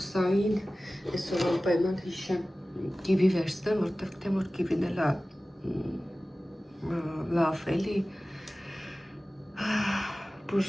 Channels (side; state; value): both; normal; correlation 0.97